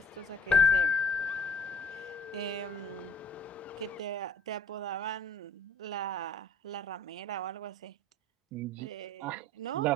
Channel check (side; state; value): both; normal; correlation 0.55